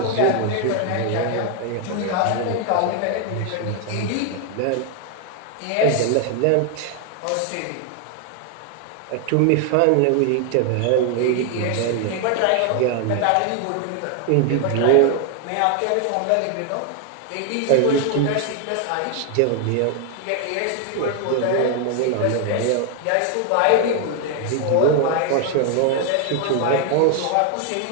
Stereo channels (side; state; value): both; different; correlation 0.00